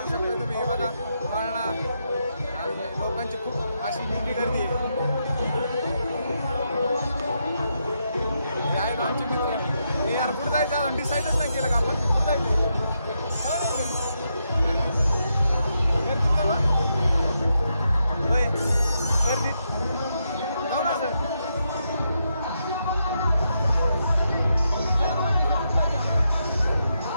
शकता तुम्ही बघा वळणा आणि लोकांची खूप अशी मोठी गर्दी आहे आमचे मित्र यार कुठं जायचं डिसाईडच नाही केलं का आपण कुठं जायचं गर्दी जाऊ ना सर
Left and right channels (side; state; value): both; inverted; correlation -0.82